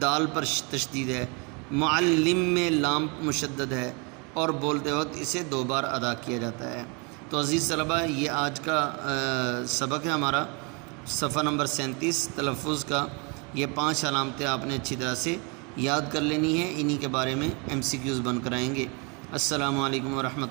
دال پر تشدید ہے، معلم میں لام مشدد ہے، اور بولتے وقت اسے 2 بار ادا کیا جاتا ہے۔ تو عزیز طلبہ، یہ آج کا سبق ہے ہمارا، صفحہ نمبر 37 تلفظ کا۔ یہ 5 علامتیں آپ نے اچھی طرح سے یاد کر لینی ہے، انہی کے بارے میں MCQs بن کر آئیں گے۔ السلام علیکم ورحمۃ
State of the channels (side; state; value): left; quieter; 31.9 dB